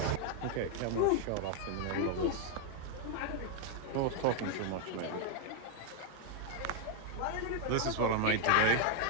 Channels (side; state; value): both; different; correlation 0.01